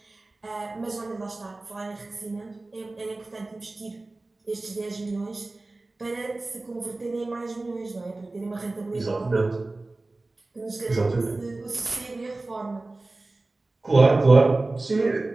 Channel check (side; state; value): left; quieter; 3.1 dB